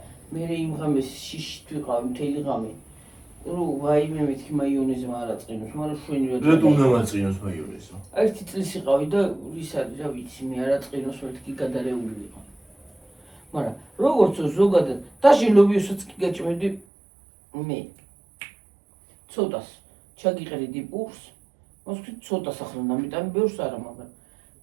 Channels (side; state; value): left; drops out; at 16.9 s